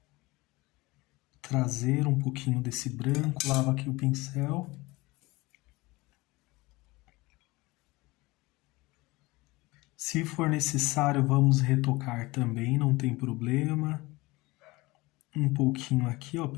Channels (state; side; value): quieter; right; 22.0 dB